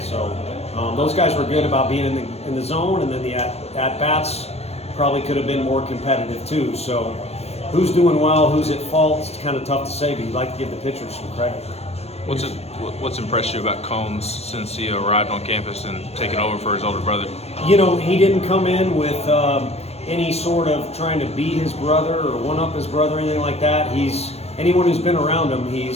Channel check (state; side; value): late; right; 0.30 ms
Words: those guys were good about being in the zone, and then the at-bats probably could have been more competitive too. So who's doing well, who's at fault, it's kind of tough to say, but you'd like to give the pitchers some credit. What's impressed you about Combs since he arrived on campus and taken over for his older brother? He didn't come in with any sort of trying to beat his brother or one-up his brother or anything like that. Anyone who's been around him,